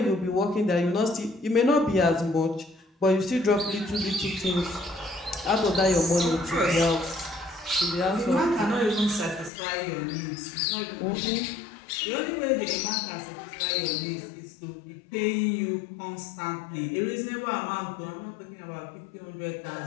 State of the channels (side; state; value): right; drops out; at 9.5 s